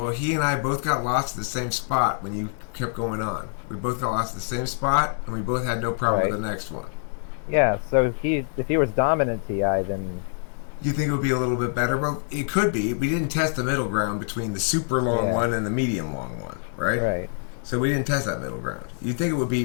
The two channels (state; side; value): silent; right; 62 dB below the other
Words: he and I both got lost at the same spot when you kept going on. We both got lost at the same spot, and we both had no problem Right. with the next one. Yeah. So if he was dominant TI, then You think it would be a little bit better? Well, it could be. We didn't test the middle ground between the super long Yeah. one and the medium long one, right? right. So we didn't test that middle ground. You'd think it would be